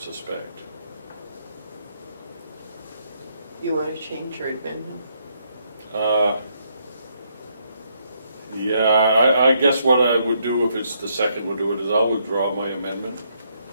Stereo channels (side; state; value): both; inverted; correlation -0.74